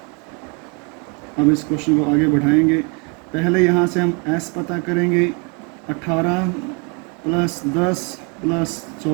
अब इस क्वेश्चन को आगे बढ़ाएंगे। पहले यहाँ से हम s पता करेंगे। 18 प्लस 10 प्लस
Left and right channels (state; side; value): quieter; left; 32.7 dB